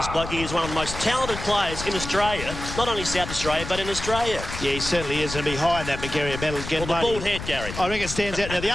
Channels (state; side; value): noise; left; rumble, 9 dB below the sound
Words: bloke. He is one of the most talented players in Australia, not only South Australia, but in Australia. Yeah, he certainly is, and behind that McGarry medal again. Well, the bald head, Gary. I reckon it stands out. Now, the